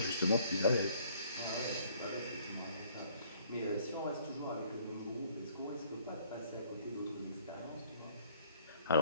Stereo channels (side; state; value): both; inverted; correlation -0.60